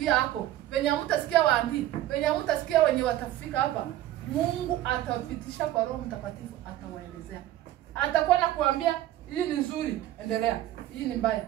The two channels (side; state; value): left; quieter; 13.9 dB